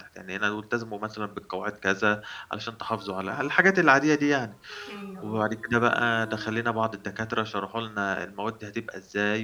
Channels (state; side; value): identical; both; correlation 1.00